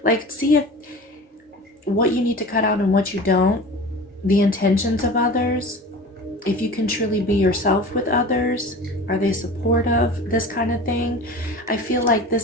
like see if what you need to cut out and what you don't, the intentions of others, if you can truly be yourself with others, are they supportive, this kind of thing. I feel like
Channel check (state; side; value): normal; both; correlation 0.36